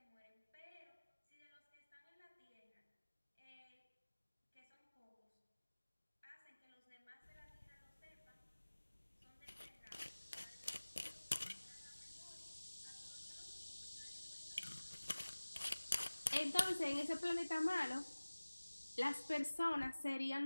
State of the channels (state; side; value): inverted; both; correlation -1.00